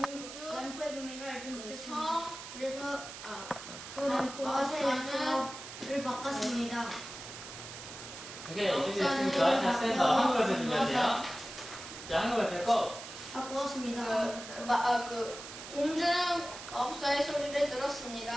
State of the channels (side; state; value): right; noise; hiss, 12 dB below the sound